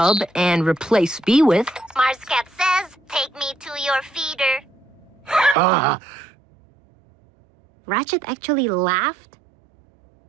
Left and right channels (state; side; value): drops out; left; at 5.6 s